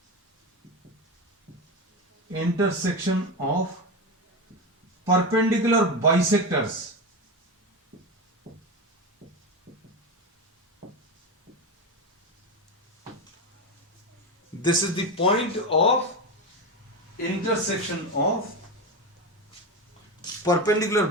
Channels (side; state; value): both; normal; correlation 0.18